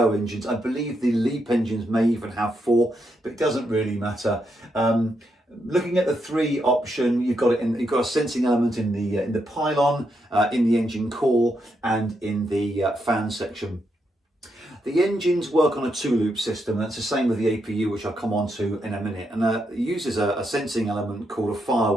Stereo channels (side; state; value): both; normal; correlation 0.81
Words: engines, I believe the LEAP engines may even have four, but it doesn't really matter. Looking at the three option, you've got a sensing element in the pylon, in the engine core, and in the fan section. The engines work on a two-loop system. That's the same with the APU, which I'll come on to in a minute. And it uses a sensing element called a